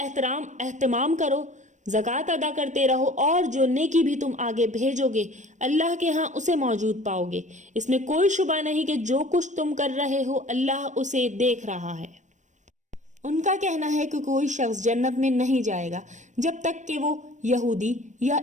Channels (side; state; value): left; late; 0.35 ms